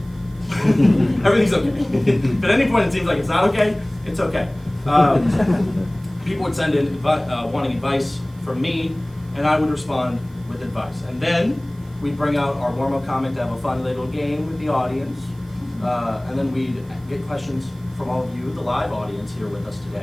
Everything's okay. If at any point it seems like it's not okay, it's okay. People would send in wanting advice from me, and I would respond with advice. And then we'd bring out our warm-up comment to have a fun little game with the audience. And then we'd get questions from all of you, the live audience here with us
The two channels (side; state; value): right; noise; hiss, 29 dB below the sound